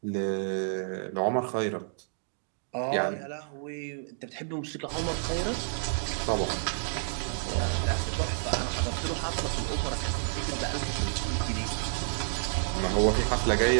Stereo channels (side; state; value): left; silent; digital silence